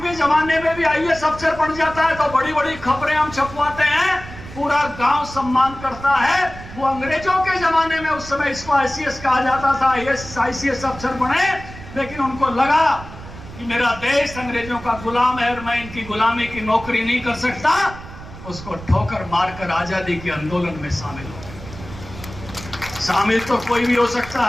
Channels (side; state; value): right; noise; rumble, 14 dB below the sound